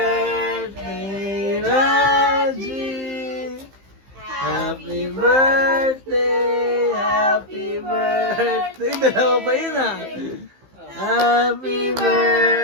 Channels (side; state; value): left; late; 15 ms